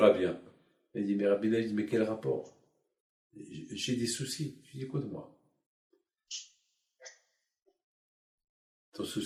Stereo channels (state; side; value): identical; both; correlation 1.00